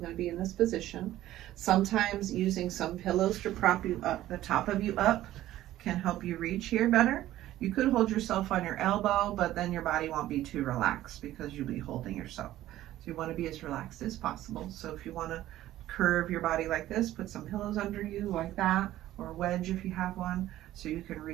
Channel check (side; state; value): left; quieter; 14.2 dB